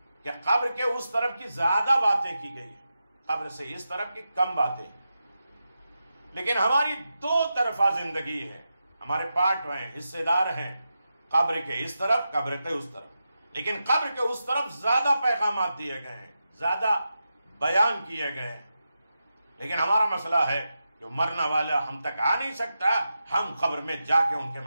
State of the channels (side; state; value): both; inverted; correlation -0.89